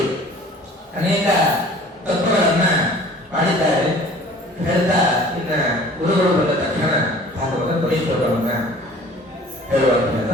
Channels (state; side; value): normal; both; correlation 0.48